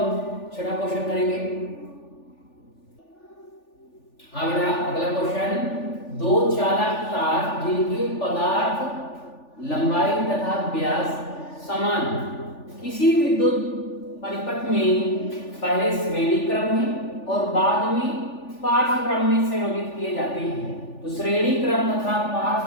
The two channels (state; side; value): late; right; 3.4 ms